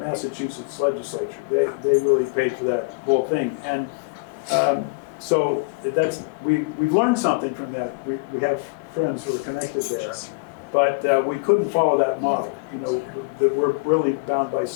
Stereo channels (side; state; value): right; quieter; 29.9 dB